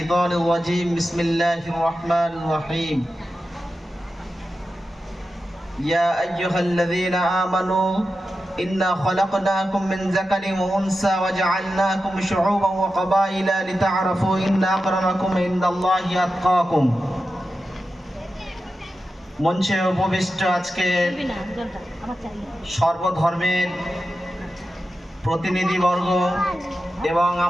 الرجيم. بسم الله الرحمن الرحيم. يا أيها الذين آمنوا إنا خلقناكم من ذكر وأنثى وجعلناكم شعوبا وقبائل لتعرفوا إن أكرمكم عند الله أتقاكم. মঞ্চে উপবিষ্ট আজকে সর্বধর্মের প্রতিনিধিবর্গ এবং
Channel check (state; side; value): normal; both; correlation 0.91